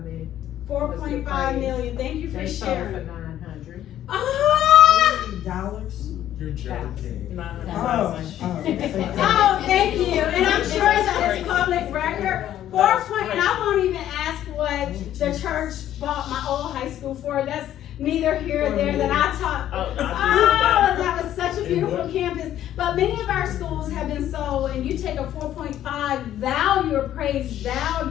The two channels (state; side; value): quieter; right; 11.8 dB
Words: million. 4.5 million. Thank you for They sold for sharing. 900. Ah! Dollars? You're joking. Oh. Oh, thank you. And I'm sure that it's public record. 4 point, and I won't even ask what the church bought my old high school for. That's neither here nor there that I taught. Oh, Oh, that was such a beautiful campus. But many of our schools have been sold, and you take a 4.5 value, appraised